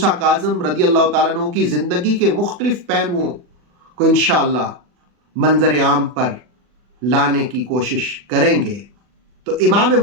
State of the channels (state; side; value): late; left; 40 ms